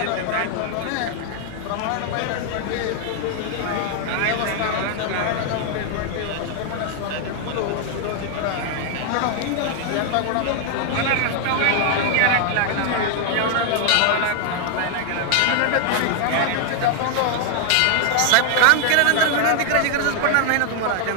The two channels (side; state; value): both; different; correlation 0.00